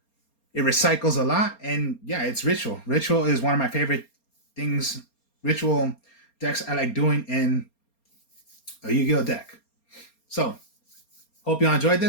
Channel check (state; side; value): late; right; 4.3 ms